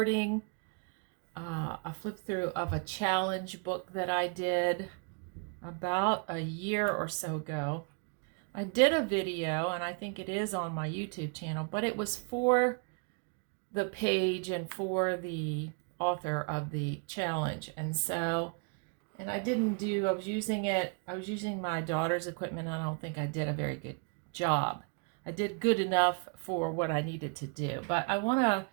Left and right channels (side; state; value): left; quieter; 36.3 dB